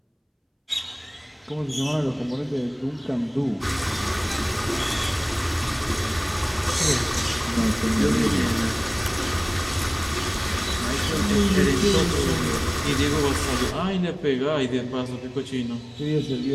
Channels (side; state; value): both; identical; correlation 1.00